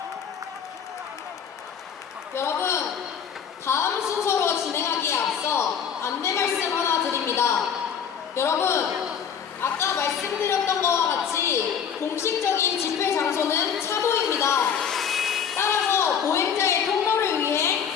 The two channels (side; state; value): right; quieter; 7.6 dB